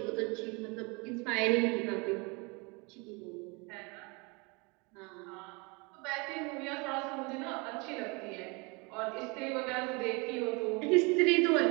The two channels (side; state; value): left; quieter; 29.1 dB